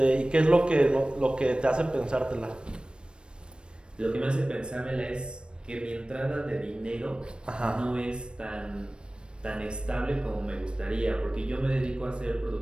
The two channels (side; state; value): left; late; 0.054 ms